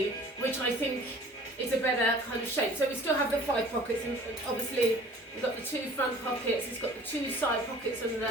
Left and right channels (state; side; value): normal; both; correlation 0.49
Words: which I think is a better kind of shape. So we still have the 5 pockets, and obviously we've got the 2 front pockets, it's got the 2 side pockets and